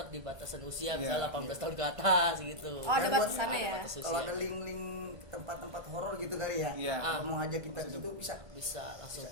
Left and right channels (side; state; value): left; late; 1.3 ms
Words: di batasan usia, Iya, misalnya 18 tahun ke atas gitu. Oh, ada Dan buat- batasannya ya. batas Kalau usia. ada link-link tempat-tempat horor gitu kali ya. Iya. Kalau mau ngajak kita ke situ bisa. Bisa langsung